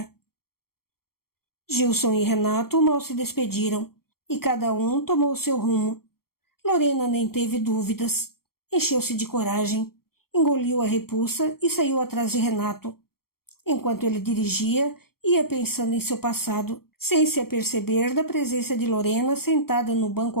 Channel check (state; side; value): late; right; 0.94 ms